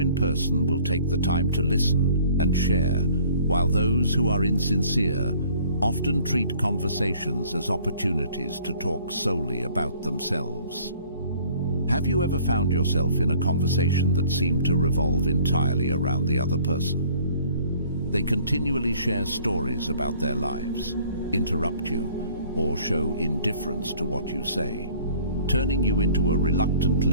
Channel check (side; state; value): both; inverted; correlation -0.55